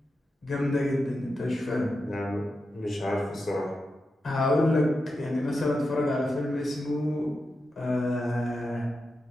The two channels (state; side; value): normal; both; correlation 0.89